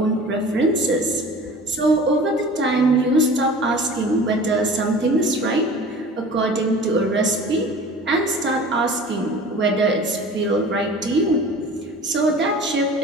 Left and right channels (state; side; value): normal; both; correlation 0.41